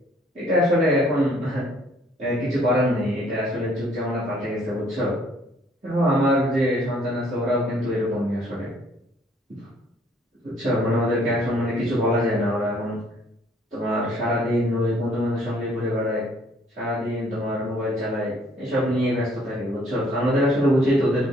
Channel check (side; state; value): both; normal; correlation 0.61